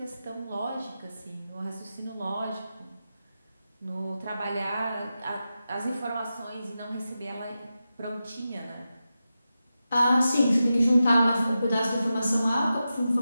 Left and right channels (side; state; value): both; inverted; correlation -0.91